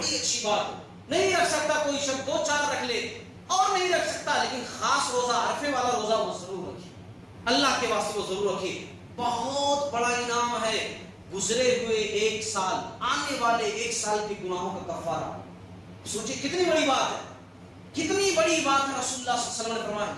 اچھی بات ہے۔ نہیں رکھ سکتا کوئی شخص 2-4 رکھ لے، اور نہیں رکھ سکتا لیکن خاص روزہ عرفے والا روزہ وہ ضرور رکھے، اللہ کے واسطے وہ ضرور رکھے۔ بہت بڑا انعام ہے گزرے ہوئے 1 سال، آنے والے 1 سال کے گناہوں کا کفارہ۔ سوچیں کتنی بڑی بات ہے، کتنی بڑی بات ہے۔ رسول اللہ صلی اللہ علیہ وسلم نے فرمایا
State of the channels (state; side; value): identical; both; correlation 1.00